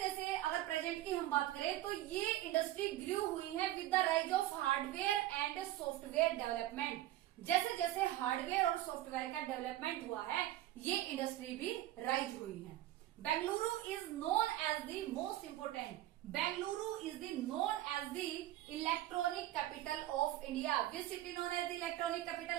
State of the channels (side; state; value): left; quieter; 14.6 dB